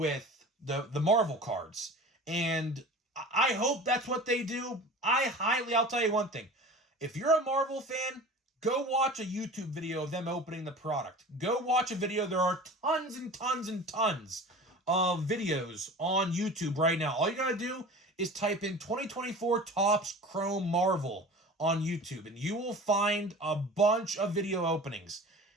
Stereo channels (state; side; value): normal; both; correlation 0.38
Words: the Marvel cards. And I hope that's what they do. I'll tell you one thing. If you're a Marvel fan, go watch a YouTube video of them opening the product. Go watch a video. There are tons and tons and tons of videos on YouTube right now. All you gotta do is type in 2024 Topps Chrome Marvel on YouTube, and you will find a bunch of video openings.